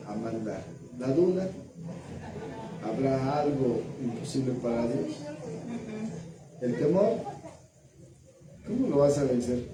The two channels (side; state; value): both; identical; correlation 1.00